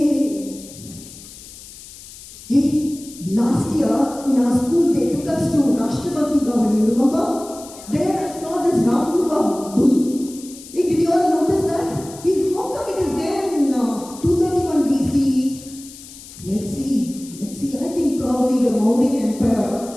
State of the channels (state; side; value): noise; left; hiss, 17 dB below the sound